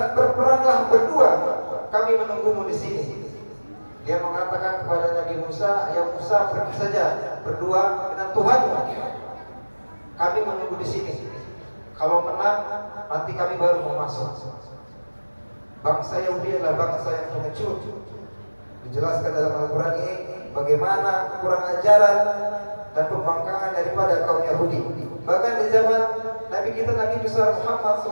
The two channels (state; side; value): inverted; both; correlation -1.00